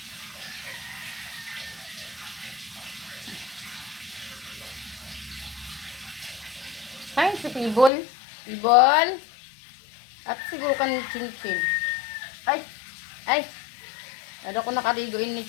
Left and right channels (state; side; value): drops out; right; at 7.9 s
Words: Ay, si Pibol. Pibol. At siguro kan Chinchin. Ay. Ay. Ano ko nakaligoin ni